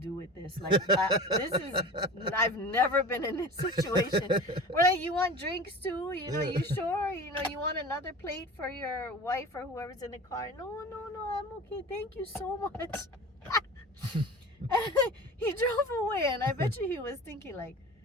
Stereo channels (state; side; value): normal; both; correlation 0.35